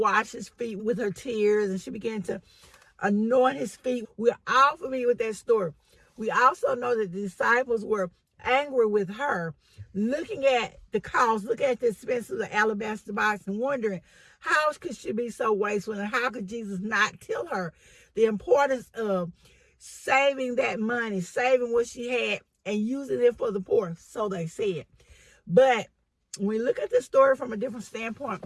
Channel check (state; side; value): identical; both; correlation 1.00